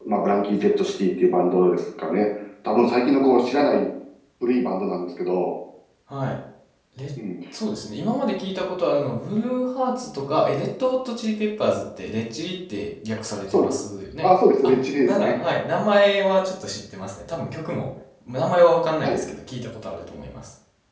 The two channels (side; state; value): both; identical; correlation 1.00